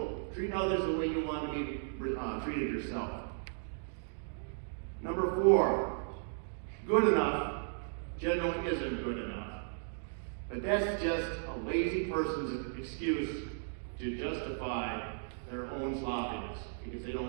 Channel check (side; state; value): left; silent; digital silence